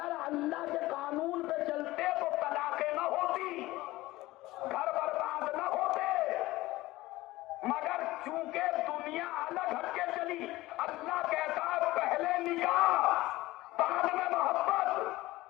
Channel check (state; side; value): quieter; right; 18.3 dB